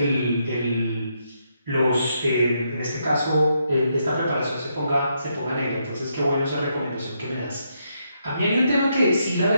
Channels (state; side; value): inverted; both; correlation -0.78